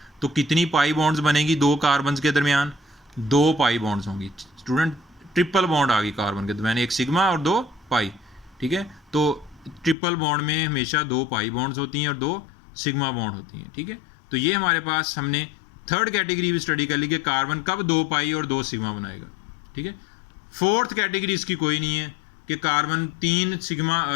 तो कितनी पाई बॉन्ड्स बनेगी? 2 कार्बन के दरमियान 2 पाई बॉन्ड्स होंगी। स्टूडेंट ट्रिपल बॉन्ड आ गई कार्बन के दरमियान, एक सिग्मा और 2 पाई, ठीक है। तो ट्रिपल बॉन्ड में हमेशा 2 पाई बॉन्ड्स होती हैं और 2 सिग्मा बॉन्ड होती हैं, ठीक है। तो ये हमारे पास हमने थर्ड कैटेगरी भी स्टडी कर ली कि कार्बन कब 2 पाई और 2 सिग्मा बनाएगा, ठीक है। फोर्थ कैटेगरी इसकी कोई नहीं है कि कार्बन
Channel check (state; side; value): drops out; right; at 10.0 s